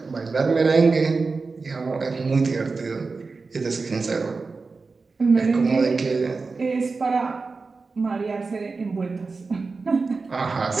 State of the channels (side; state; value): left; quieter; 4.2 dB